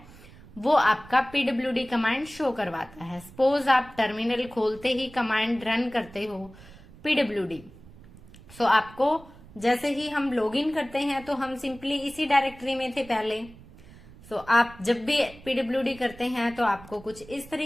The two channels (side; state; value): right; noise; rumble, 21 dB below the sound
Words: वो आपका पीडब्ल्यूडी कमांड शो करवाता है। सपोज आप टर्मिनल खोलते ही कमांड रन करते हो पीडब्ल्यूडी, सो आपको जैसे ही हम लॉगिन करते हैं तो हम सिंपली इसी डायरेक्टरी में थे पहले। सो आप जब भी पीडब्ल्यूडी करते हैं तो आपको कुछ इस